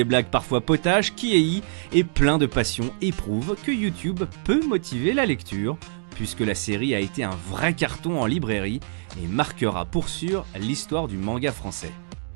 blagues parfois potaches, Kiei et plein de passion éprouve que YouTube peut motiver la lecture, puisque la série a été un vrai carton en librairie et marquera pour sûr l'histoire du manga français.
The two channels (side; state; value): left; silent; digital silence